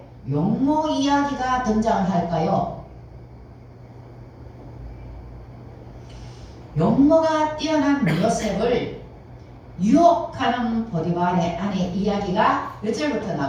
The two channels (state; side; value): identical; both; correlation 1.00